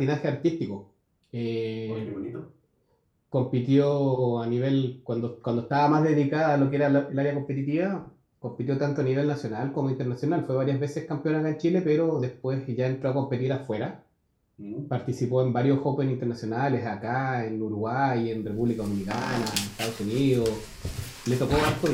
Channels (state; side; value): identical; both; correlation 1.00